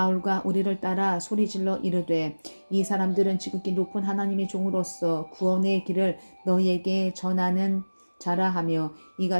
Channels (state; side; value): inverted; both; correlation -1.00